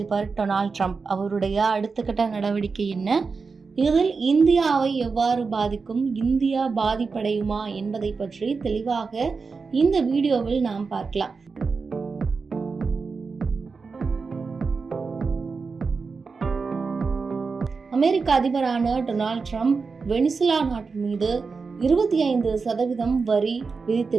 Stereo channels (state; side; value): quieter; left; 4.7 dB